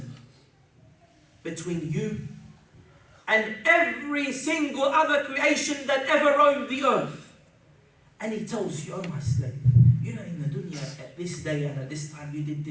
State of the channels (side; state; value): both; identical; correlation 1.00